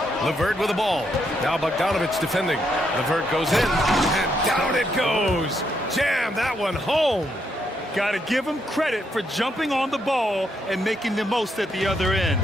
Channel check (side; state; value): both; normal; correlation 0.77